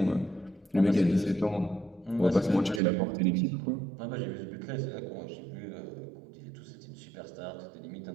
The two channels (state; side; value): drops out; left; at 2.8 s